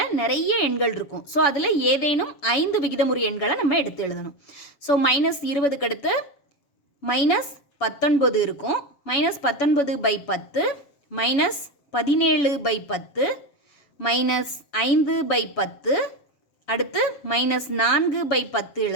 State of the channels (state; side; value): late; right; 7.1 ms